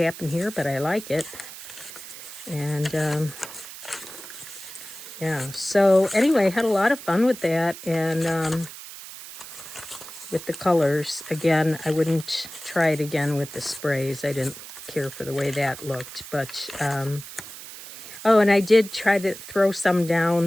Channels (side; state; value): right; noise; hiss, 13 dB below the sound